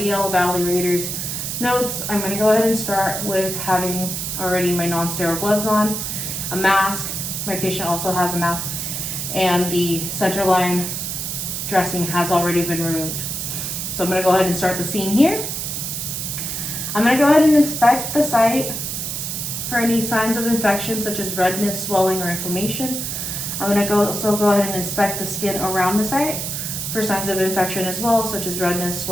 evaluator's notes, I'm going to go ahead and start with having already my non-sterile gloves on, a mask, my patient also has a mask, and the central line dressing has already been removed. So I'm going to go ahead and start the scene here. I'm going to go ahead and inspect the site for any signs of infection such as redness, swelling, or inflammation. I'm going to also go ahead and inspect the skin around the site for signs of infection as well, such as redness,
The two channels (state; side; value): noise; right; hiss, 4 dB below the sound